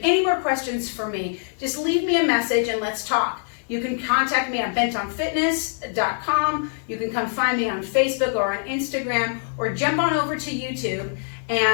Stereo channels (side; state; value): right; silent; digital silence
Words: any more questions for me, just leave me a message and let's talk. You can contact me at bentonfitness.com. You can come find me on Facebook or on Instagram, or jump on over to YouTube